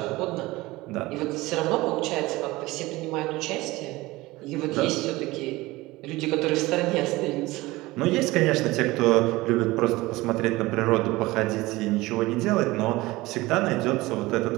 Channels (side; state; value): left; quieter; 20.0 dB